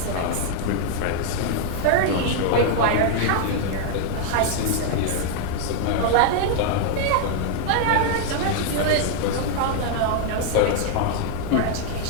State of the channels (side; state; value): both; different; correlation 0.00